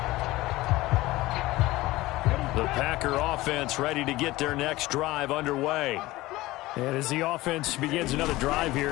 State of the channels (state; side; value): quieter; right; 18.6 dB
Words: 30. The Packer offense ready to get their next drive underway. And as the offense begins another drive